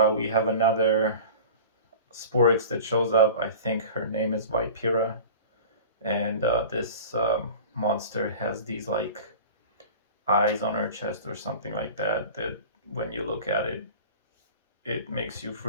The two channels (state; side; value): inverted; both; correlation -0.38